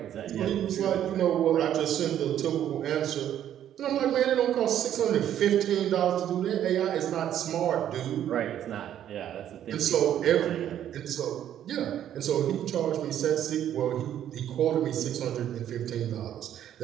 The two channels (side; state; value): left; quieter; 10.7 dB